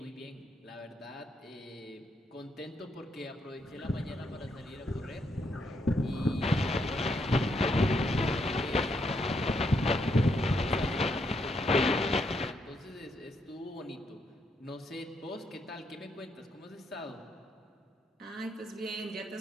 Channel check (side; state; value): both; normal; correlation 0.77